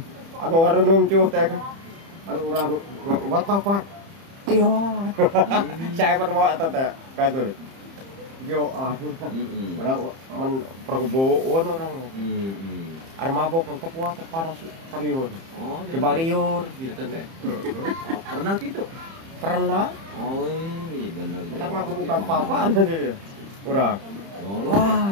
Anu warunum cuh teh. Anu urang buat papat. Iya. Saya pun mau eta teh katur. Yo Orang men perkebunan orang. Ada mabok untuk kuat panas serius. Oh, Di Baliur. gitu teh. Oh, pernah gitu? Pernah. Oh, iya bener. Kita mah bukan papaan tadi. Urang.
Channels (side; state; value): left; late; 30 ms